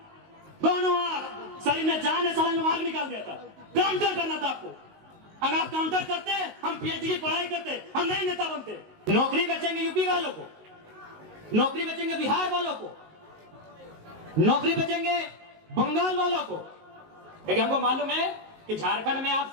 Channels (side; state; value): left; late; 19 ms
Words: दोनों आंख, शरीर में जान है, सड़न में आंख निकाल दिया था। काउंटर करना था आपको। अगर आप काउंटर करते हम पीएचडी की पढ़ाई करते, हम नहीं नेता बनते। नौकरी बेचेंगे यूपी वालों को, नौकरी बेचेंगे बिहार वालों को, नौकरी बेचेंगे बंगाल वालों को। लेकिन हमको मालूम है कि झारखंड में आप